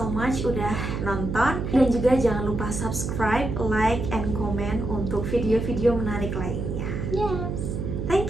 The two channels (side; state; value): right; noise; hum, 3 dB below the sound